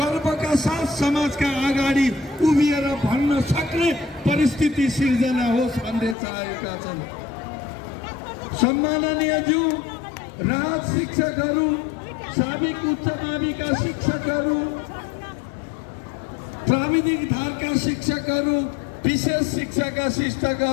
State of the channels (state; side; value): drops out; right; at 6.2 s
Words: साथ समाजका अगाडि उभिएर भन्न सक्ने परिस्थिति सिर्जना होस् भन्ने चाहेका छन्। सम्माननीय ज्यू राहत शिक्षकहरू, साबिक उच्च माविका शिक्षकहरू, प्राविधिक धारका शिक्षकहरू, विशेष शिक्षाका